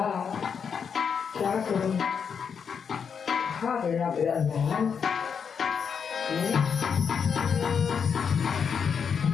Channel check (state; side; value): quieter; right; 6.7 dB